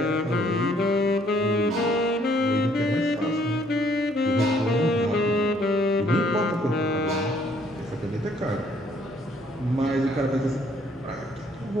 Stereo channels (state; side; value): normal; both; correlation 0.64